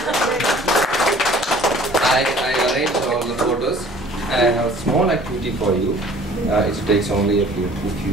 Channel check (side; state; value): both; normal; correlation 0.50